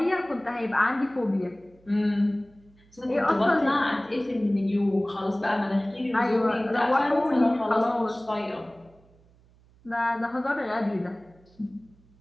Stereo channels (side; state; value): right; noise; hum, 29 dB below the sound